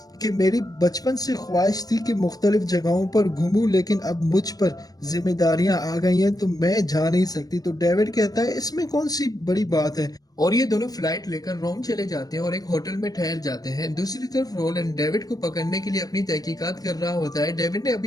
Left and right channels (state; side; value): late; right; 0.18 ms